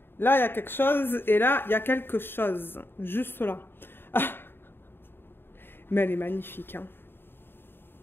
Là, il y a quelque chose. Et là, il y a quelque chose. Juste là. Ah. Mais elle est magnifique. Hein.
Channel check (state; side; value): late; right; 0.10 ms